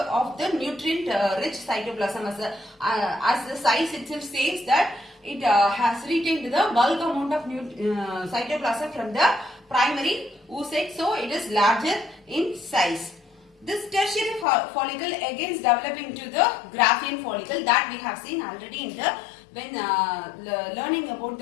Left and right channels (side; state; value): right; drops out; at 14.5 s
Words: of the nutrient rich cytoplasm, as the size itself says that it has retained the bulk amount of cytoplasm from the primary oocyte, so it is larger in size. This tertiary follicle again is developing to the Graafian follicle that we have seen already in the when learning about